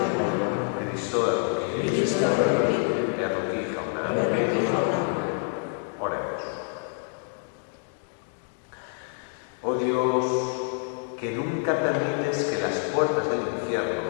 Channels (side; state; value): right; silent; 56 dB below the other